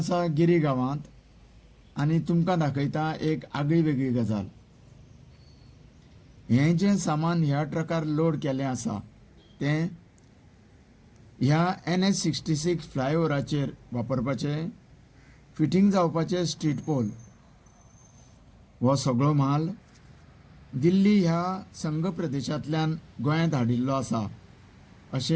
गिरी गांवांत आनी तुमकां दाखयता एक आगळी वेगळी गजाल. हें जें सामान ह्या ट्रकार लोड केलें आसा तें ह्या NH-66 फ्लायओव्हराचेर वापरपाचें फिटींग जावपाचें स्ट्रीट पोल. हो सगळो माल दिल्ली ह्या संघ प्रदेशांतल्यान गोंयांत हाडिल्लो आसा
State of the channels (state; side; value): identical; both; correlation 1.00